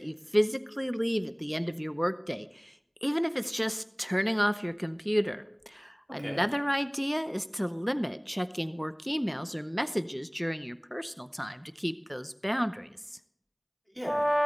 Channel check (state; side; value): identical; both; correlation 1.00